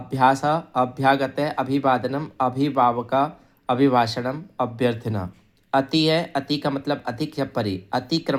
अभ्यागत है, अभिवादनम, अभिभावका, अभिभाषणम, अभ्यर्थना। अति है, अति का मतलब अधिक या परि,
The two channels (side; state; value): both; identical; correlation 1.00